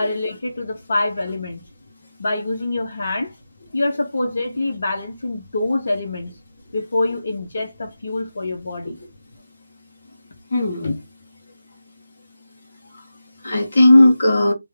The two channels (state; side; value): inverted; both; correlation -0.94